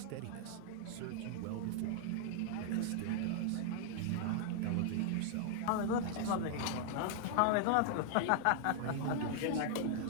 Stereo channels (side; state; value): both; different; correlation -0.01